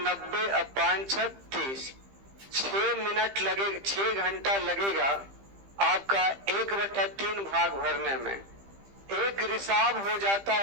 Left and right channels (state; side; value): late; left; 15 ms